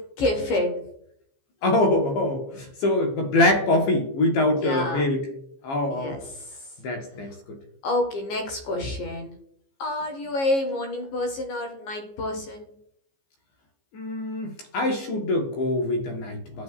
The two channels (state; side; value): late; right; 15 ms